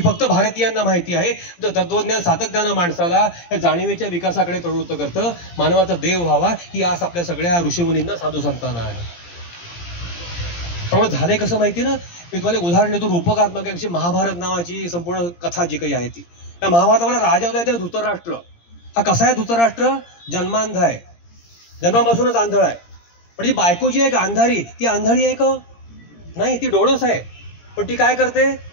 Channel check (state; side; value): late; right; 17 ms